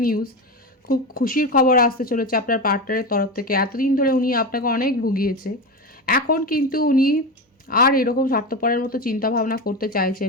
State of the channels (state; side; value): normal; both; correlation 0.20